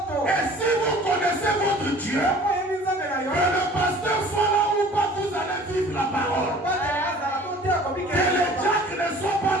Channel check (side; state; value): both; normal; correlation 0.48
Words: Et si vous connaissez votre Dieu, que le pasteur soit là ou pas, vous allez vivre la parole. Que les diacres ne soient pas